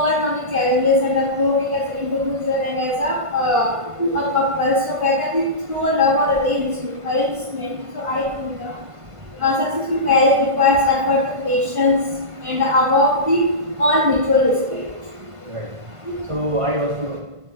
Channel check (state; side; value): late; left; 1.5 ms